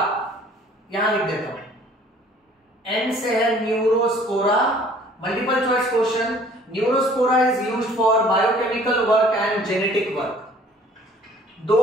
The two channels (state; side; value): normal; both; correlation 0.54